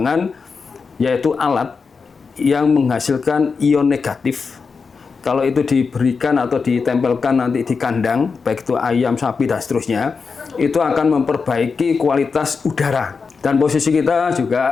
yaitu alat yang menghasilkan ion negatif. Kalau itu diberikan atau ditempelkan nanti di kandang, baik itu ayam, sapi, dan seterusnya, itu akan memperbaiki kualitas udara. Dan posisi kita juga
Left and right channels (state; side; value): quieter; right; 5.1 dB